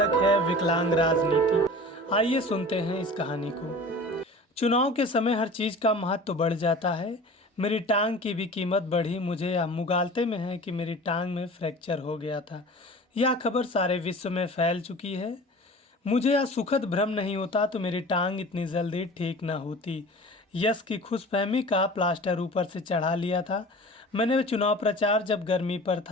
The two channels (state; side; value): normal; both; correlation 0.40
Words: है विकलांग राजनीति। आइए सुनते हैं इस कहानी को। चुनाव के समय हर चीज़ का महत्व बढ़ जाता है। मेरी टांग की भी कीमत बढ़ी। मुझे यह मुगालते में है कि मेरी टांग में फ्रैक्चर हो गया था। यह खबर सारे विश्व में फैल चुकी है। मुझे यह सुखद भ्रम नहीं होता तो मेरी टांग इतनी जल्दी ठीक न होती। यश की खुशफहमी का प्लास्टर ऊपर से चढ़ा लिया था। मैंने चुनाव प्रचार जब गर्मी पर